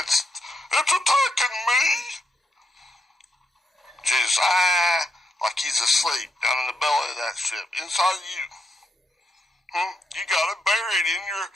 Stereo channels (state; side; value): normal; both; correlation 0.79